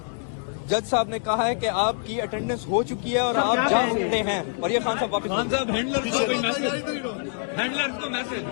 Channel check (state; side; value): silent; right; digital silence